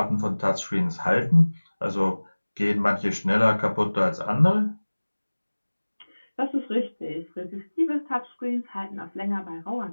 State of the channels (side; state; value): both; inverted; correlation -1.00